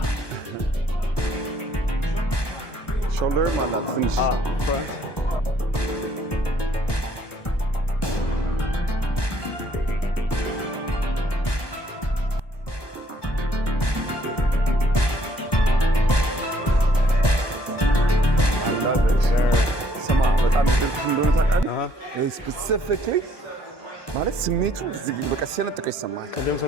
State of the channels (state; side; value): late; right; 1.2 ms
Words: Shoulder, my love. Finish. ስፔሲፊክሊ ማለት ስሜቱ በቃ ሲያነጥቀ ይሰማል። ቅድም